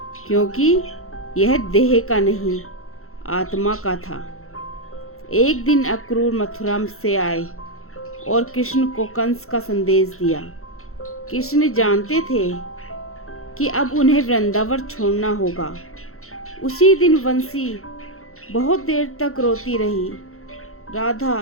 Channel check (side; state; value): right; late; 0.63 ms